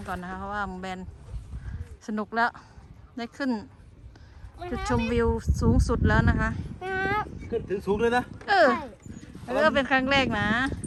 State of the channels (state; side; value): identical; both; correlation 1.00